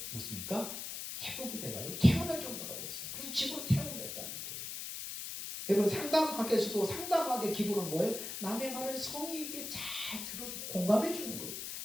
무엇입니까? 회복이 돼가지고 퇴원할 정도가 됐어요. 그래서 집으로 퇴원을 했다는 거예요. 여러분 상담학에서도 상담학의 기본은 뭐예요? 남의 말을 성의 있게 잘 들어주고 공감해 주는 거예요.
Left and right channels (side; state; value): left; noise; hiss, 6 dB below the sound